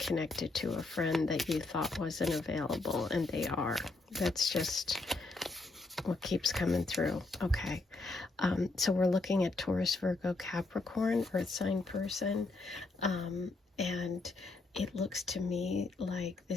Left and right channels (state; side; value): quieter; right; 3.3 dB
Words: to a friend that you thought wasn't available, and they are. That's just what keeps coming through. Okay. So we're looking at Taurus, Virgo, Capricorn, Earth sign person. And it looks to me like